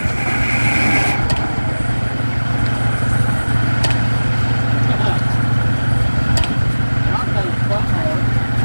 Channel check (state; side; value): inverted; both; correlation -1.00